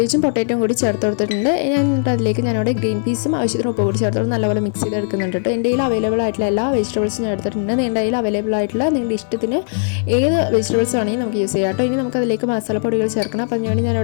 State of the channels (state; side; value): silent; right; digital silence